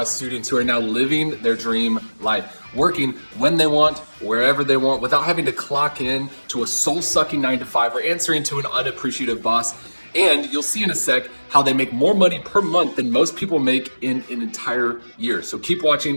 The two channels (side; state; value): both; inverted; correlation -1.00